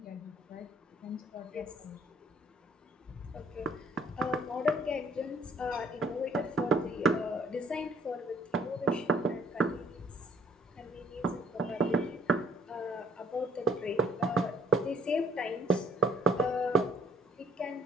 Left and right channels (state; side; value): normal; both; correlation 0.61